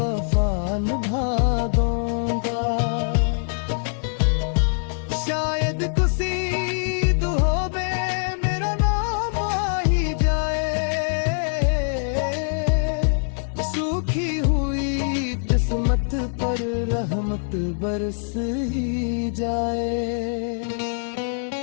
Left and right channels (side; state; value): right; silent; digital silence